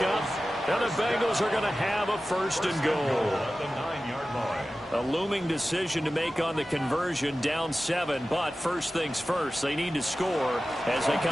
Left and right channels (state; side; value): normal; both; correlation 0.95